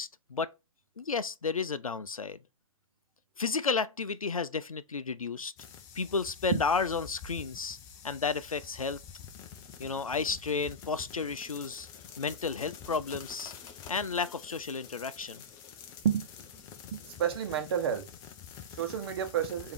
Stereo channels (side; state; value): both; normal; correlation -0.10